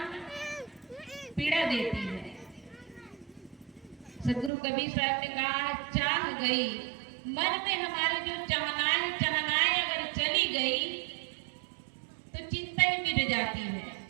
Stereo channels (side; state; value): left; drops out; at 4.5 s